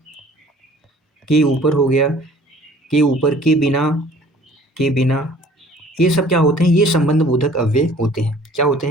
ऊपर हो गया, के ऊपर, के बिना, के बिना। ये सब क्या होते हैं, ये संबंध बोधक अव्यय होते हैं। क्या होते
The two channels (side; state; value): both; normal; correlation 0.52